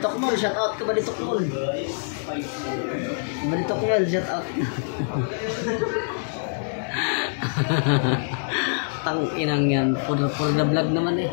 Mall, shout out ka Baditok Mall. Baditok Mall, shout out. Tang inang yan, for the vlog naman eh.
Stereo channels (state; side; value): silent; right; digital silence